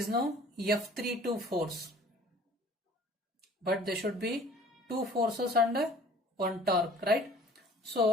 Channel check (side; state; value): both; normal; correlation 0.50